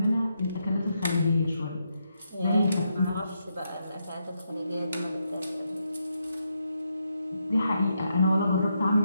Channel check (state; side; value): inverted; both; correlation -0.81